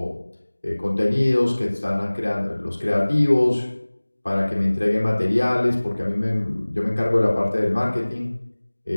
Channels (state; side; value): inverted; both; correlation -1.00